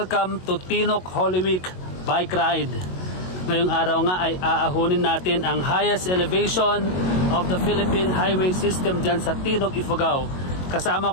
to Tinok Holy Week Bike Ride. Ngayong araw nga ay aahunin natin ang highest elevation of the Philippine Highway System dyan sa Tinok, Ifugao. Kasama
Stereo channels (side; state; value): right; late; 22 ms